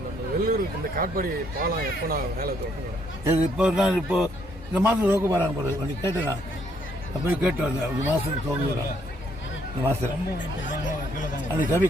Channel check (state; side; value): normal; both; correlation 0.70